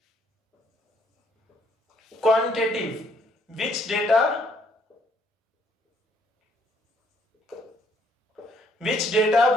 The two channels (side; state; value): both; normal; correlation 0.67